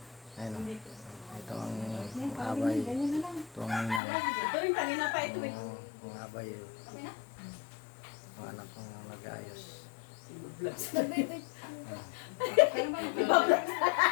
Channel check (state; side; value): drops out; right; at 4.0 s